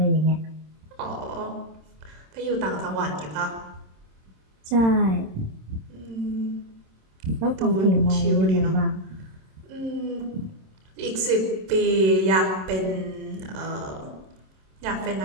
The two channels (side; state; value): left; late; 26 ms